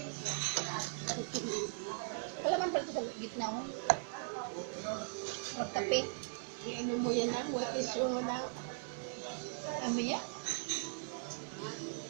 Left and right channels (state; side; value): silent; left; digital silence